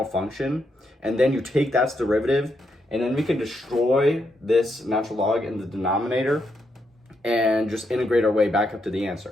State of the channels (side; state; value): both; normal; correlation 0.80